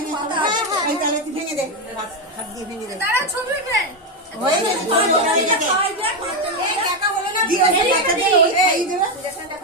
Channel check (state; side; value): normal; both; correlation 0.07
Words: এই তাহলে তুই ভেঙে দে হাত দিয়ে ভেঙে দে তারা ছবি উঠবে হয়ে গেছে এই টাকা হলো না দিয়ে এই টাকা দিয়ে এই দেবে